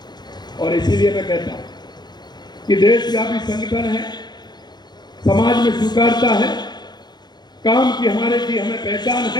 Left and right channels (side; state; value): right; late; 0.21 ms